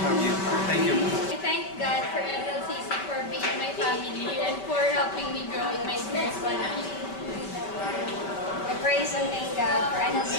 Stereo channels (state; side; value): late; right; 5.2 ms